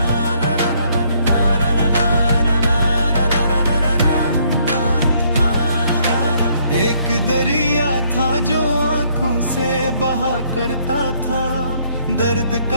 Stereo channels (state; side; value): inverted; both; correlation -0.67